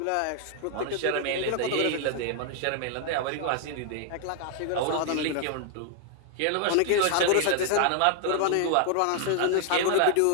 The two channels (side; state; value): both; different; correlation 0.00